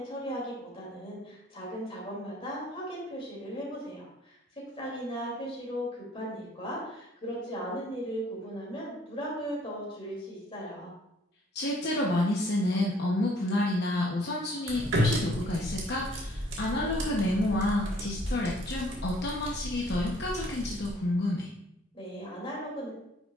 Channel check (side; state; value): both; normal; correlation 0.60